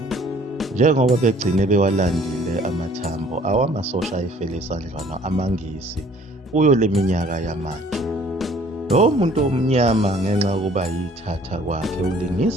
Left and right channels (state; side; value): normal; both; correlation 0.55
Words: njengoba begcine bewalandile amathambo awamasosha ayefele esandlwana amaNgisi kuyo le minyaka yamanje. Lo muntu omnyama ngenxa yokuba yithatha kwakhe